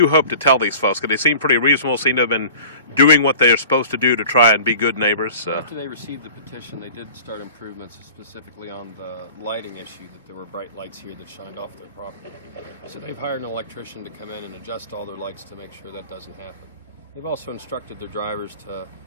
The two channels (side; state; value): both; inverted; correlation -0.43